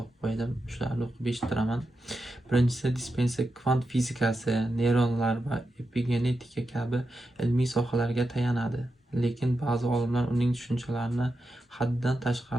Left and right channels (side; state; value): both; normal; correlation 0.88